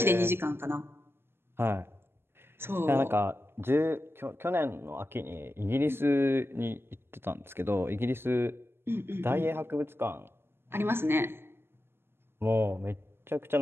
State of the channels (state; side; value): late; left; 0.11 ms